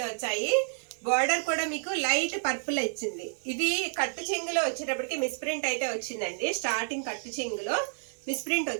వచ్చాయి. బార్డర్ కూడా మీకు లైట్ పర్పుల్ వచ్చింది. ఇది కట్టు చెంగులో వచ్చేటప్పటికి మిస్ ప్రింట్ అయితే వచ్చిందండి. స్టార్టింగ్ కట్టు చెంగులో మిస్ప్రింట్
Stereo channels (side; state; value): left; silent; digital silence